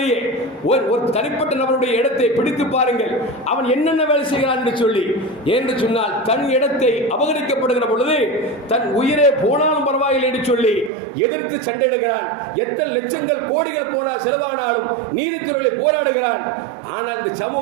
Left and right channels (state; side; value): drops out; left; at 10.9 s